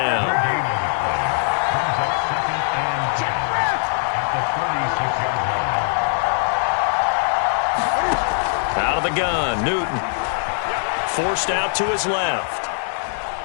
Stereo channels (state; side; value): silent; right; 65 dB below the other